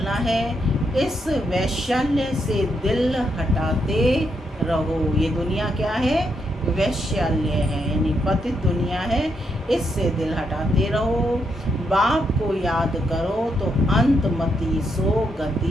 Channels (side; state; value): both; normal; correlation 0.79